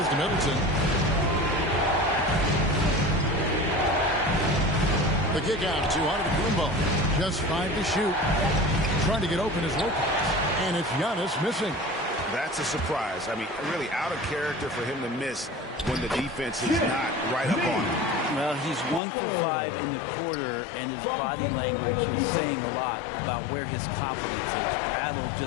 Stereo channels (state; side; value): drops out; right; at 19.0 s